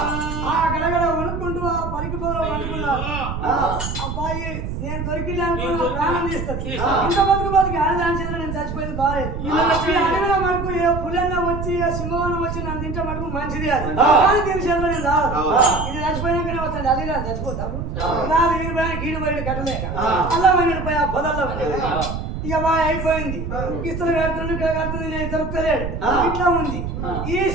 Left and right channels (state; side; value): noise; right; rumble, 5 dB below the sound